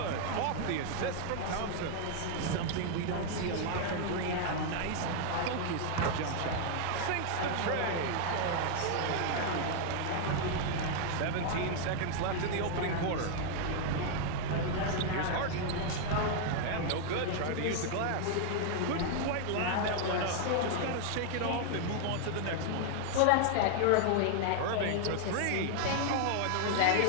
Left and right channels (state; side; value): different; both; correlation 0.00